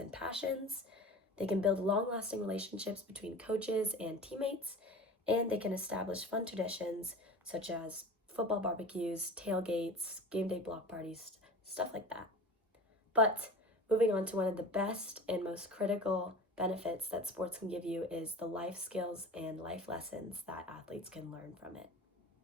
passions. They can build long-lasting relationships between coaches and teammates, and they can establish fun traditions such as football barbecues, tailgates, game day block parties, stuff like that. But moving on to one of the best and most critical benefits that sports can give you is the life skills and life lessons that athletes can learn from it.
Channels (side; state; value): both; normal; correlation 0.36